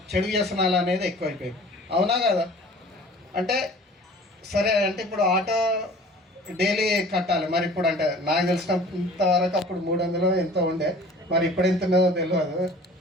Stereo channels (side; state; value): both; normal; correlation 0.46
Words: చెడు వ్యసనాలు అనేది ఎక్కువైపోయింది. అవునా కదా? అంటే సరే అంటే ఇప్పుడు ఆటో డైలీ కట్టాలి, మరి ఇప్పుడు అంటే నాకు తెలిసినంత వరకు అప్పుడు 300 ఎంతో ఉండే, మరి ఇప్పుడు ఎంత ఉన్నదో తెలియదు.